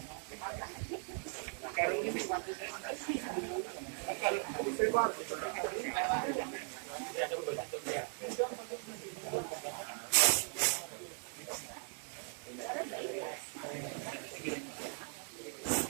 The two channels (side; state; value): left; silent; 52 dB below the other